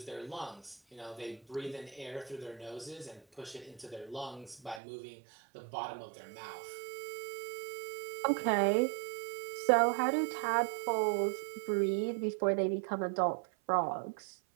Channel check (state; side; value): drops out; left; at 4.8 s